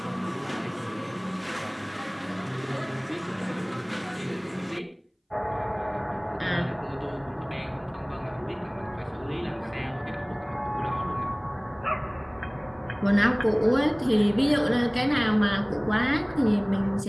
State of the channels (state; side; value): identical; both; correlation 1.00